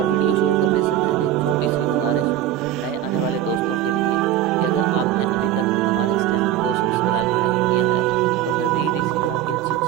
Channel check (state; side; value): quieter; left; 11.6 dB